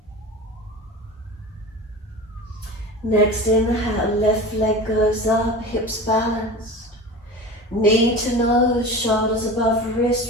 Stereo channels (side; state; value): both; normal; correlation 0.33